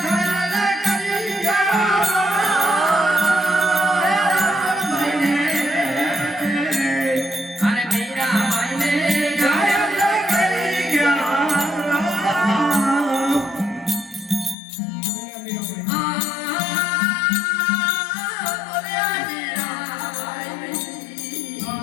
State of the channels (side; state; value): right; drops out; at 14.6 s